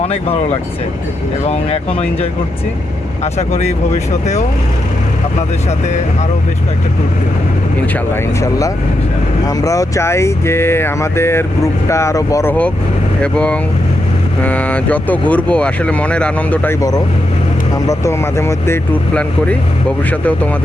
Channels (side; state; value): both; normal; correlation 0.84